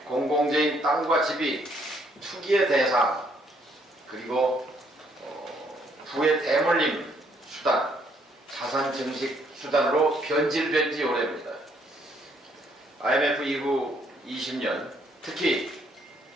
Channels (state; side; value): normal; both; correlation 0.68